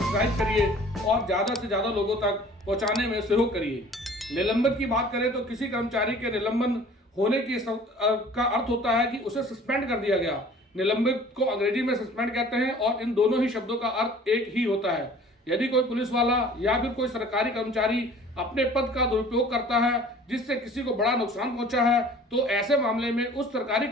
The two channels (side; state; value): both; normal; correlation 0.49